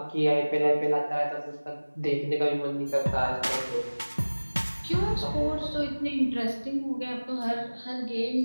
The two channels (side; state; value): both; inverted; correlation -1.00